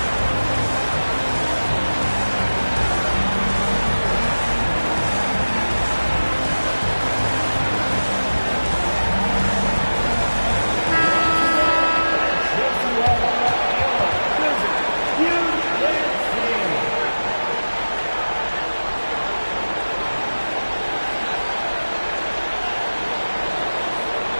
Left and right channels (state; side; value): inverted; both; correlation -1.00